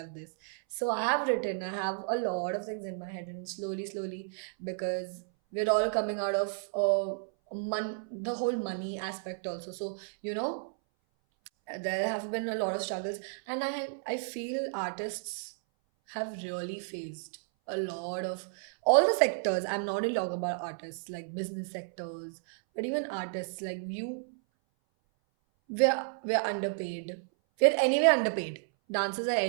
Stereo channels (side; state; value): left; silent; 56 dB below the other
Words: this. So I have a lot of things in my head, and slowly, because we're all coming out of the whole money aspect also. So, there have been a lot of struggles, and I feel artists have really faced a lot of all the sectors. I'm not only talking about artists, like business sectors, but even artists like you. We're underpaid. We're anyway underpaid. Dancers are